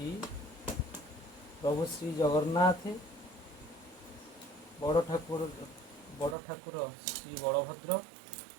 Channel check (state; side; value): drops out; left; at 6.4 s